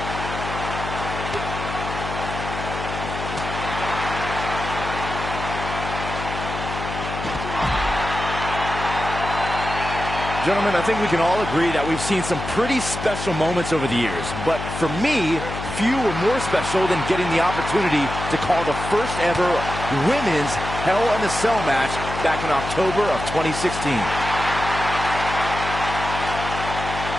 Gentlemen, I think we can all agree that we've seen some pretty special moments over the years. But for me, few were more special than getting the opportunity to call the first ever women's Hell in a Cell match back in October of 2016.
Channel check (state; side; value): noise; left; hum, 7 dB below the sound